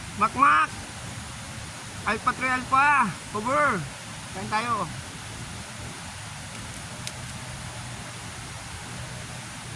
Makmak, Alpha 3 Alpha, cover. Kain tayo.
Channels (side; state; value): both; identical; correlation 1.00